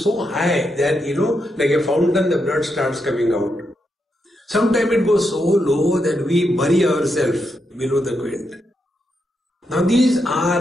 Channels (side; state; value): both; normal; correlation 0.83